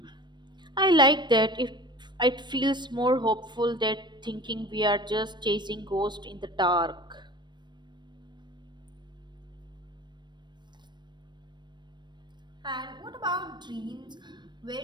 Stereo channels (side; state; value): left; late; 0.22 ms